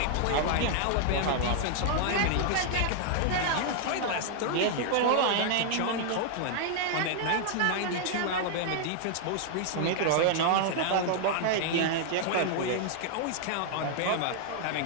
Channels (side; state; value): both; different; correlation 0.00